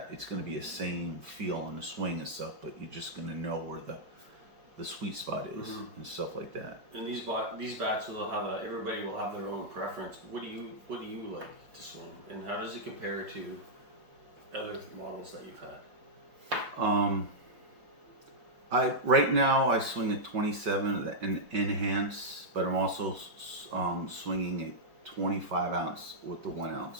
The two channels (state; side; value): late; left; 5.2 ms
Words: it's gonna be the same feel on the swing and stuff, but you're just gonna know where the sweet spot is and stuff like that. And these bats will have everybody will have their own preference. What do you like to swing, and how does it compare to other models that you've had? Right now I swing a 27 and enhance, but I'm also swinging a 25 ounce with the 1